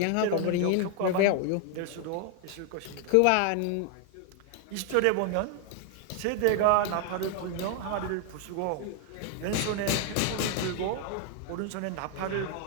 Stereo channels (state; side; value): different; both; correlation 0.00